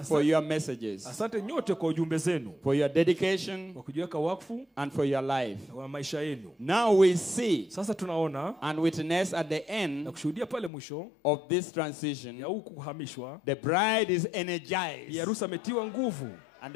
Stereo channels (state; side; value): drops out; right; at 10.7 s